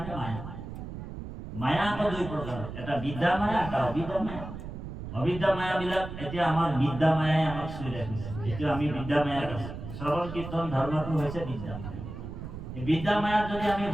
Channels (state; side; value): noise; right; rumble, 9 dB below the sound